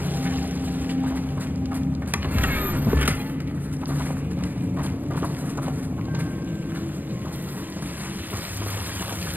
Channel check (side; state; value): left; late; 0.086 ms